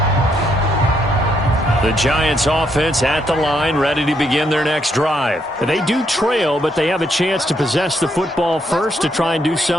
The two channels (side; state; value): both; normal; correlation 0.75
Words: The Giants offense at the line, ready to begin their next drive. They do trail, but they have a chance to possess the football first to try and do